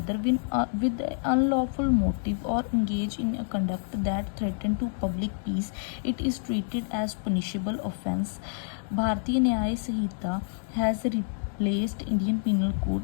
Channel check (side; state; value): right; silent; digital silence